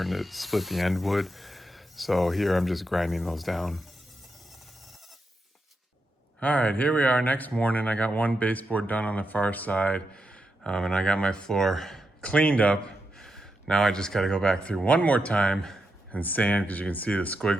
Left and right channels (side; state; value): both; normal; correlation 0.85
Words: to split the end wood. So here I'm just grinding those down. All right, here we are next morning. I got one baseboard done on the far side, and I got my floor cleaned up. Now I just got to go back through one more time and sand, because you can see the